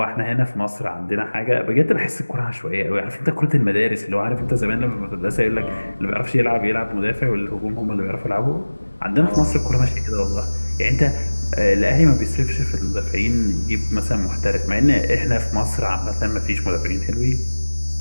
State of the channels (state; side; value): inverted; both; correlation -1.00